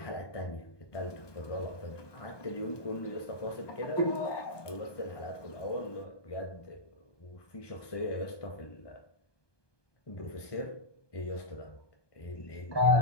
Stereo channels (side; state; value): right; late; 1.2 ms